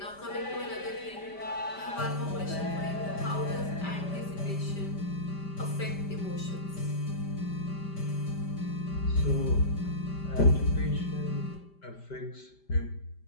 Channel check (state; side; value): late; right; 5.1 ms